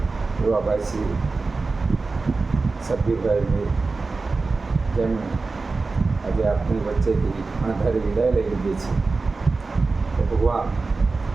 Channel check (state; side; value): quieter; left; 3.9 dB